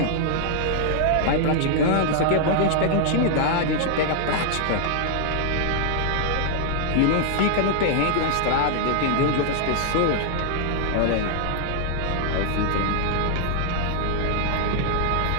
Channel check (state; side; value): different; both; correlation 0.00